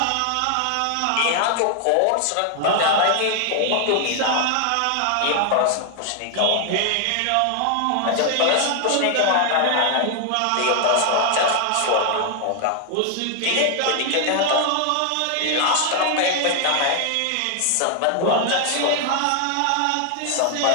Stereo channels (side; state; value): both; different; correlation 0.00